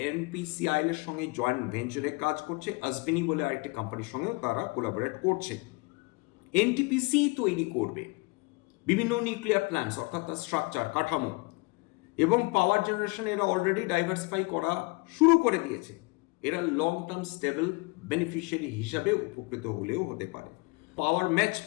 এনপিসিআইএল এর সঙ্গে জয়েন্ট ভেঞ্চারে কাজ করছে। আজভিনি বলে আরেকটি কোম্পানির সঙ্গেও তারা কোলাবোরেট করছে। এনটিপিসি তৈরি করবে বিভিন্ন নিউক্লিয়ার প্ল্যান্টস, অর্থাৎ তার স্ট্রাকচার, কাঠামো এবং পাওয়ার জেনারেশন এরা অলরেডি ডাইভার্সিফাই করা শুরু করে দিয়েছে। এরা লং টার্ম স্টেবল বেনিফিশিয়ারি হিসাবে উপকৃত হলেও হতে পারে। পাওয়ার ম্যাচ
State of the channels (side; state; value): right; quieter; 26.5 dB